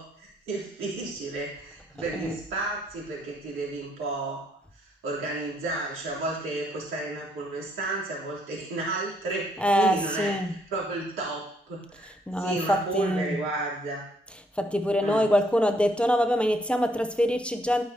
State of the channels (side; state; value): both; normal; correlation 0.70